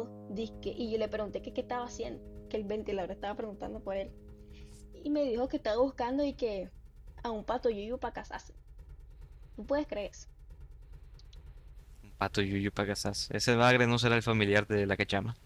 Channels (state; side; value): identical; both; correlation 1.00